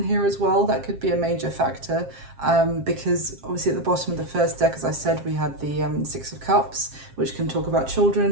here as well. That could be a major factor, because obviously at the bottom of the first deck, as I said, we had the Six of Cups, which can talk about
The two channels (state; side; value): late; left; 7.4 ms